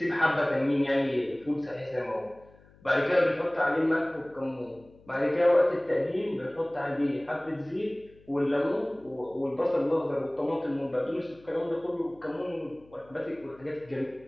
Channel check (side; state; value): left; noise; hum, 27 dB below the sound